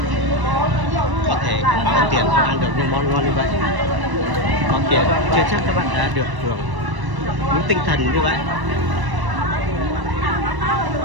có thể có tiền không ăn được những món ngon như vậy. Có tiền chưa chắc các bạn đã được hưởng những tinh thần như vậy.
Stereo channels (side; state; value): left; late; 1.0 ms